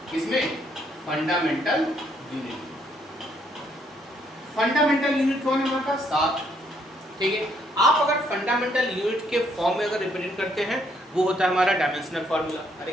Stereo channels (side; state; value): both; normal; correlation 0.70